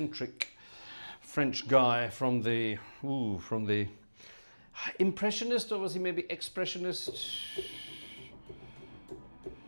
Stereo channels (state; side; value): inverted; both; correlation -1.00